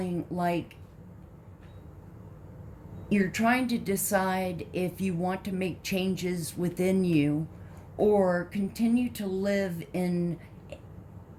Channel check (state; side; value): identical; both; correlation 1.00